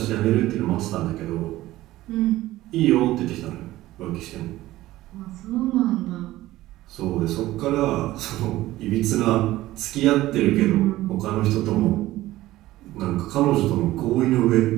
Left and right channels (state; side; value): quieter; left; 16.3 dB